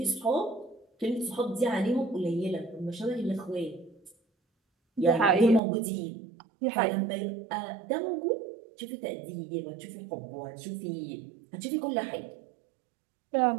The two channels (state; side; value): drops out; left; at 5.6 s